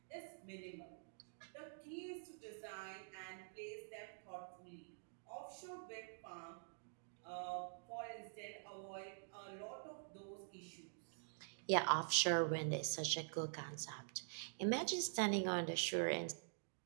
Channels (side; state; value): left; silent; digital silence